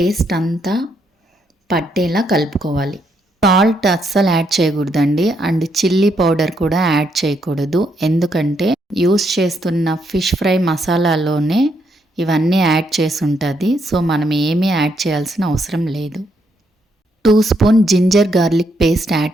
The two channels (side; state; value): both; normal; correlation 0.76